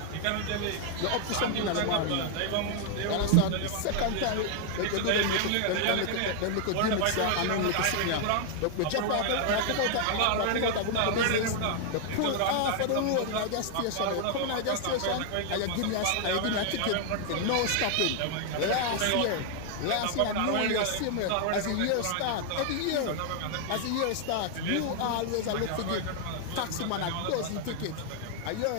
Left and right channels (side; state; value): both; different; correlation 0.00